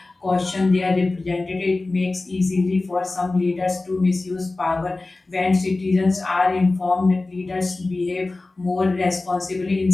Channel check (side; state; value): right; quieter; 3.2 dB